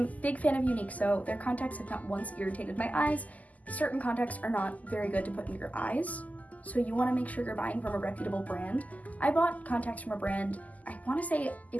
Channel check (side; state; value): right; late; 0.076 ms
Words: big fan of Unique So. Their contacts have not once irritated my eyes. Certain contacts are not very good to put in your eyes, so you want to make sure you're buying from a reputable brand. I bought contacts from a brand, I want to say